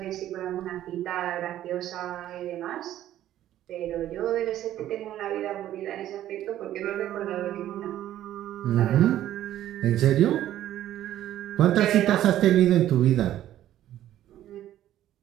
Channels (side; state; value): left; quieter; 12.6 dB